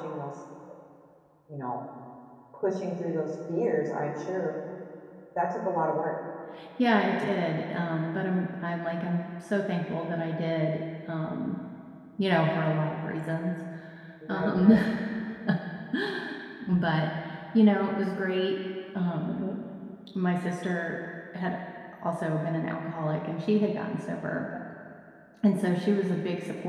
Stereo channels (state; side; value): identical; both; correlation 1.00